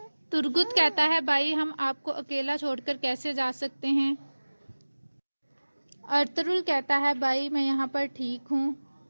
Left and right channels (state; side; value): inverted; both; correlation -1.00